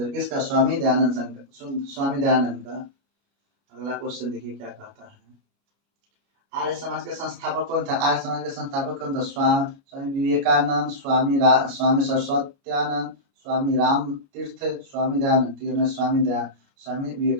किसका? स्वामी दयानंद शंकर, स्वामी दयानंद का। अगला क्वेश्चन देखिए क्या कहता है, आर्य समाज के संस्थापक कौन था? आर्य समाज के संस्थापक कौन था? स्वामी विवेकानंद, स्वामी सरस्वत्यानंद, स्वामी राम तीर्थ, स्वामी दयानंद। स्वामी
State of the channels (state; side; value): late; left; 29 ms